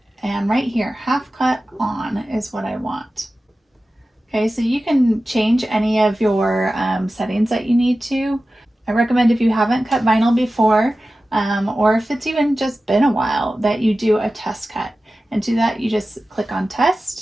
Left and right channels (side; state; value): both; normal; correlation 0.95